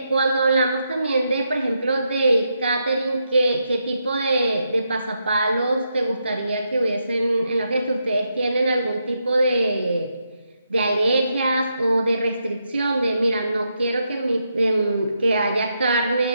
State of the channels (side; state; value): both; inverted; correlation -0.81